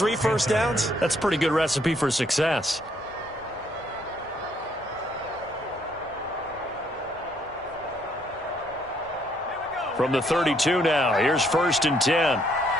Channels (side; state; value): right; noise; hum, 26 dB below the sound